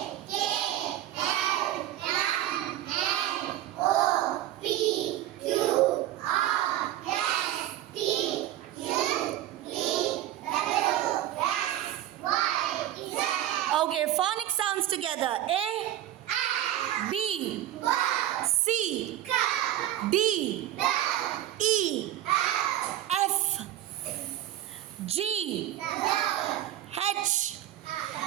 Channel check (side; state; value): left; quieter; 13.1 dB